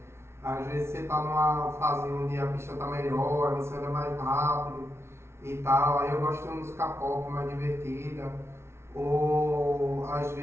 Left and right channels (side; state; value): left; late; 0.13 ms